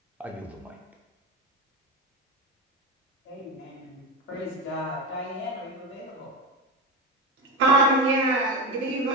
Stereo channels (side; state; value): both; normal; correlation 0.19